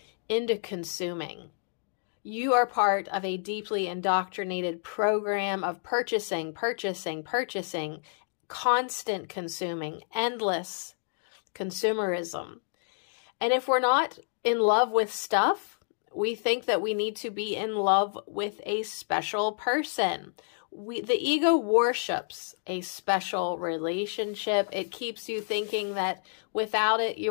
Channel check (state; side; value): silent; right; digital silence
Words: into consuming. You are part of a deeply indoctrinated program of purchasing, constant consuming, endless consumerism. And if we're not in love with stuff, we think that we need to be in love with a special person. The ego worships a special relationship. It keeps you thinking that without it,